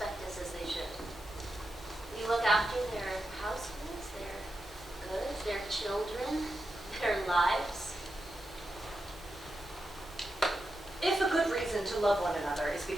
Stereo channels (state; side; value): normal; both; correlation 0.88